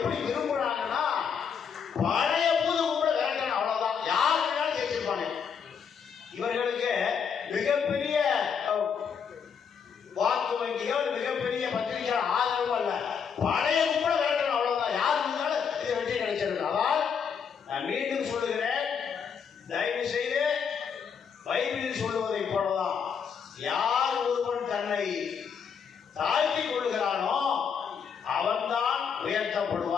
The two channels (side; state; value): right; quieter; 6.8 dB